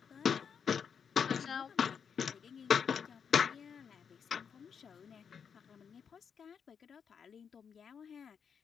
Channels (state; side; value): quieter; right; 6.9 dB